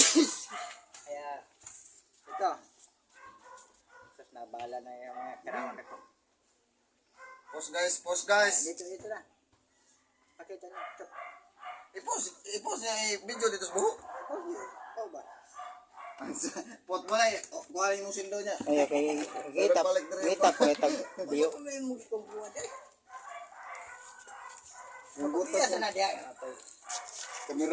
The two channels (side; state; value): both; identical; correlation 1.00